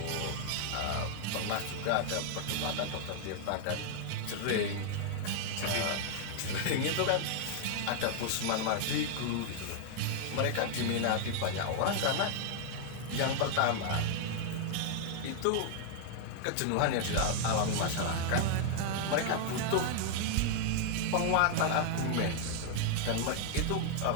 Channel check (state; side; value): different; both; correlation 0.00